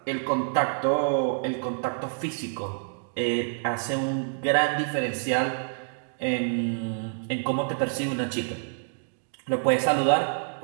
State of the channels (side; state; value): left; silent; digital silence